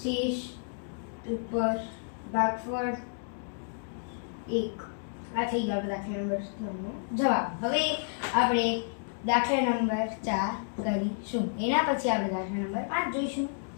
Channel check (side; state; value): right; silent; digital silence